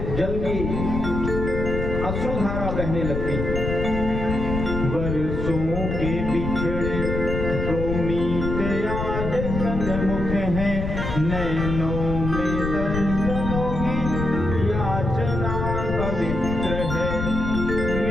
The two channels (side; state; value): left; noise; rumble, 3 dB below the sound